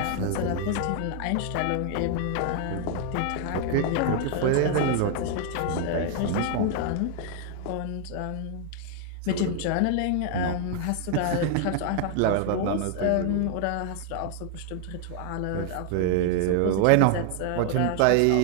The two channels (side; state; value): both; different; correlation 0.00